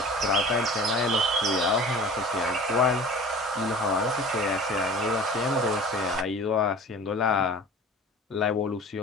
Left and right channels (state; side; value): normal; both; correlation 0.41